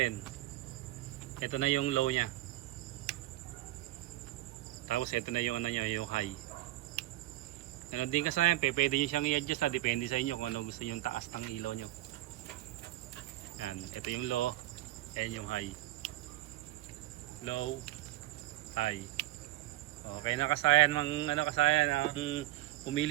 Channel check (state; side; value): quieter; left; 16.9 dB